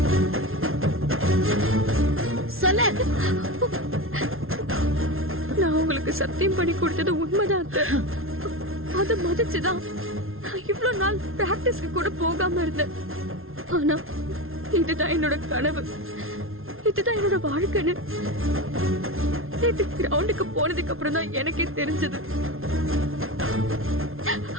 சொல்ல. நான் உங்களுக்கு சத்தியம் பண்ணி கொடுத்தது உண்மைதான். அதை மதிச்சுதான் இவ்வளவு நாள் பிராக்டிஸ்க்கு கூட போகாம இருந்தேன். ஆனா இதுதான் என்னோட கனவு, இதுதான் என்னோட வாழ்க்கைன்னு நேத்து கிரவுண்டுக்கு போனதுக்கு அப்புறம் தான் எனக்கே தெரிஞ்சது.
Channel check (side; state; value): left; late; 0.61 ms